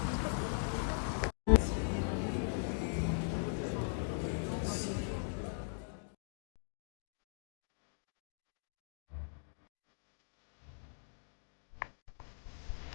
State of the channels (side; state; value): right; silent; digital silence